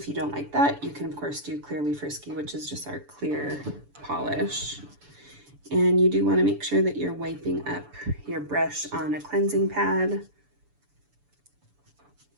you don't like that, you can of course do Clearly Frisky, which is just our clear polish. And you do want to make sure that you're wiping up your brush on a cleansing pad.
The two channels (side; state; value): left; late; 6.9 ms